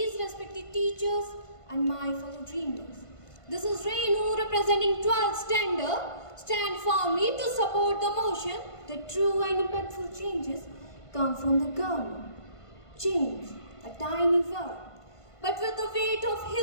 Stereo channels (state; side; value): late; right; 1.5 ms